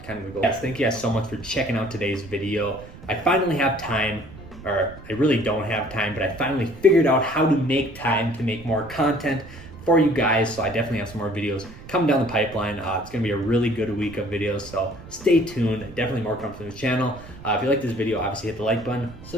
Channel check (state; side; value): noise; right; rumble, 17 dB below the sound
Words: of the goal. Yes, thank you guys so much for checking out today's video. I finally have time, or I really don't have time, but I finally figured out how to make time to make more content for you guys. So I definitely have some more videos coming down the pipeline. It's gonna be a really good week of videos, so stay tuned. Definitely more coming from the channel. If you like this video, obviously hit the like button,